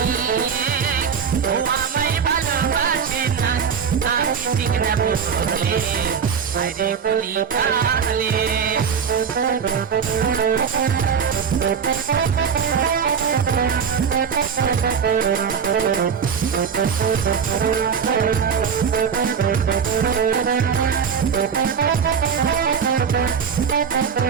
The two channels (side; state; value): left; quieter; 6.8 dB